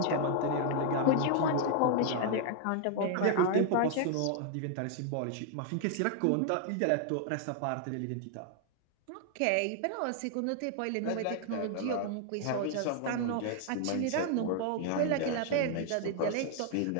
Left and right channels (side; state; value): both; different; correlation 0.00